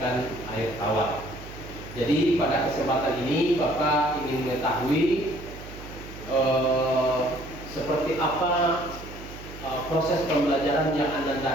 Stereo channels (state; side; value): noise; right; hum, 14 dB below the sound